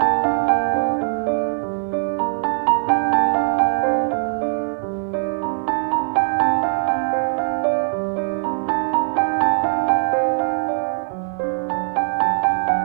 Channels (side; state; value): left; silent; 65 dB below the other